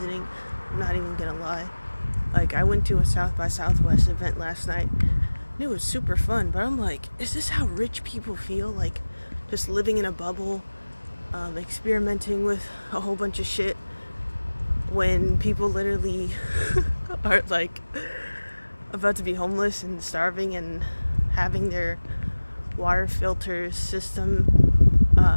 I'm not even gonna lie. Like, I went to a South by Southwest event last night, and it was super fun, but I'm like, is this how rich people feel? Like, just living in a bubble, experimenting with a whole bunch of shit, when people literally are, like, about to be homeless and starving and having their water filter system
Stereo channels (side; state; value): both; inverted; correlation -1.00